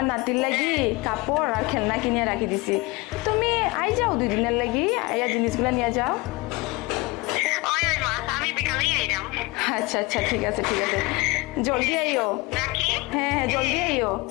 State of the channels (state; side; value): quieter; right; 23.8 dB